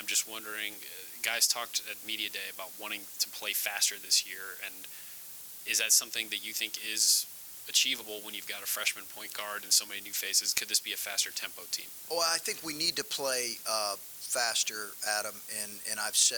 just wondering, guys talked at Media Day about wanting to play faster this year, and is that something that you think is achievable when you've got a freshman point guard and so many new faces? Could this be a faster tempo team? Well, I think we need to play faster, Adam, and I've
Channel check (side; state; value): both; identical; correlation 1.00